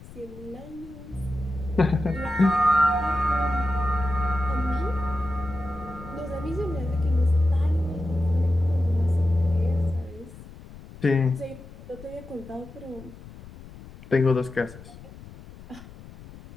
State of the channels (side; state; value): left; noise; rumble, 18 dB below the sound